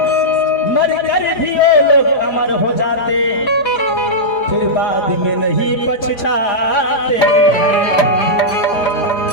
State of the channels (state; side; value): late; right; 4.9 ms